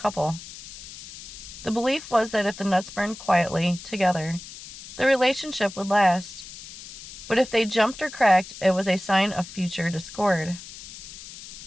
The belief was that if the nuts burned quietly together, the relationship would last. But if they jumped or cracked, it was a sign of future discord.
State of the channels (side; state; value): left; noise; hiss, 14 dB below the sound